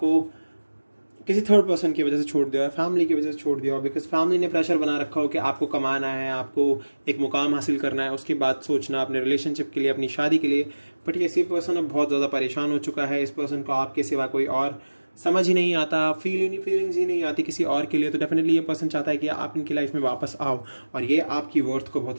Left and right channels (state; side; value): inverted; both; correlation -1.00